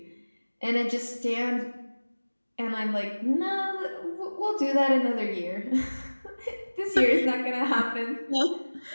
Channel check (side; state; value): both; inverted; correlation -1.00